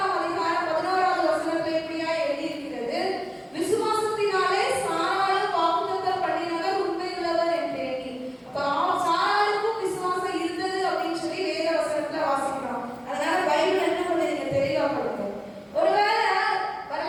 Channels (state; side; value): identical; both; correlation 1.00